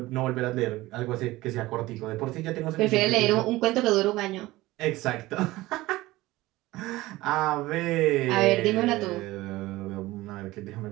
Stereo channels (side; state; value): left; quieter; 18.6 dB